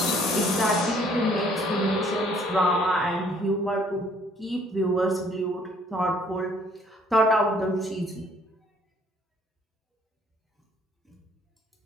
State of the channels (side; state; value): both; normal; correlation 0.61